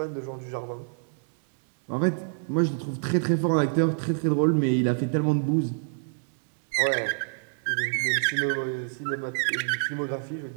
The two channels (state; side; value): silent; left; digital silence